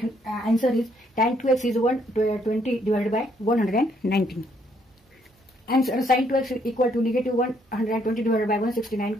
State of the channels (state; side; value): normal; both; correlation 0.70